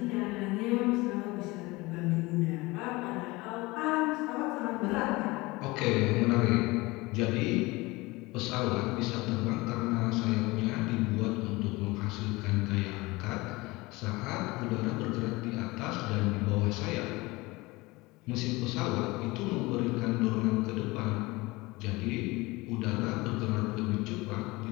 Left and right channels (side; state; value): right; quieter; 22.2 dB